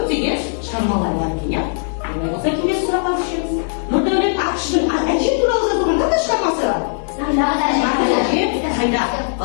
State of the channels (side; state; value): right; silent; 67 dB below the other